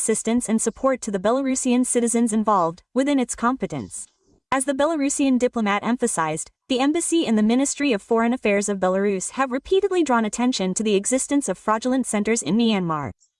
and support to the Belarusian citizens involved, within its competence. As the Belarusian diplomat emphasized, the embassy and the Ministry of Foreign Affairs of Belarus have repeatedly drawn attention to the existence of fraudulent centers in Myanmar.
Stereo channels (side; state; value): both; identical; correlation 1.00